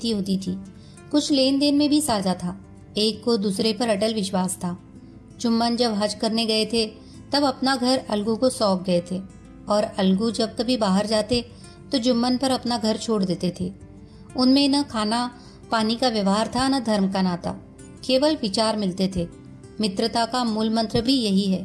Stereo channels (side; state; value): both; identical; correlation 1.00